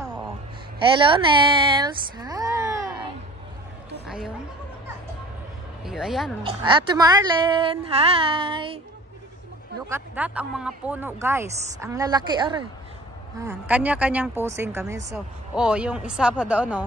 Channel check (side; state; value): both; normal; correlation 0.44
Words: Hello Nels! Hi! Ayun. Ayan. Ate Marlene! Hi! Look at that. Ang mga puno guys. Ang lalaki are. Kanya-kanyang posing kami. So, oh, yung isa pa doon,